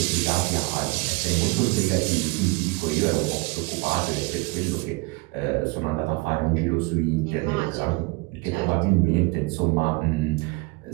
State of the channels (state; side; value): quieter; left; 25.6 dB